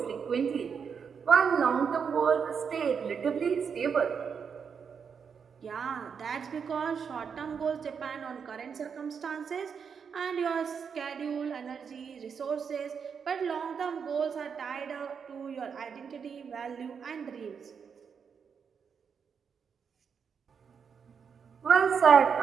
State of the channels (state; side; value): quieter; left; 6.5 dB